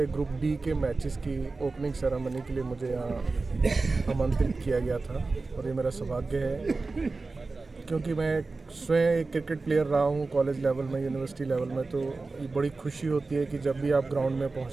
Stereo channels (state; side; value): quieter; left; 3.7 dB